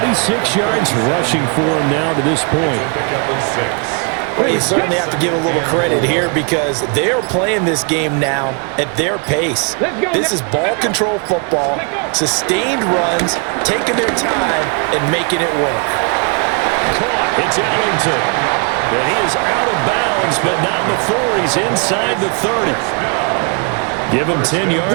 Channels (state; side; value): quieter; left; 36.7 dB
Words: yards rushing for him now to this point. Well, you certainly have to give a little credit here because they are playing this game now at their pace. This is ball control football, sustained runs, taking their time, and making it work. Caught. It's Ellington. And he is out of bounds, but not before he's inside the 30. Give him 10